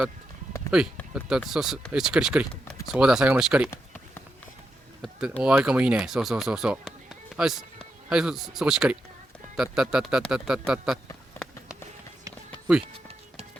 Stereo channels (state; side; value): normal; both; correlation 0.85